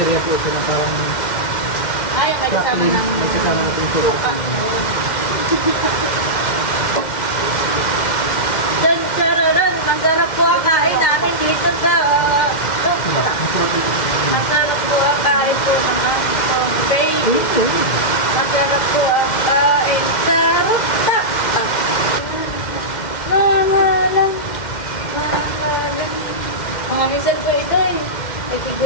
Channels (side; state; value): right; late; 2.1 ms